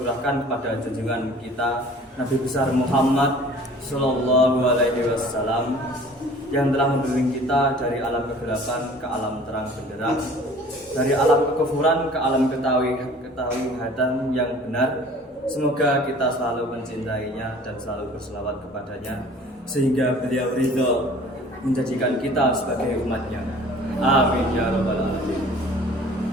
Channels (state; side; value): normal; both; correlation 0.49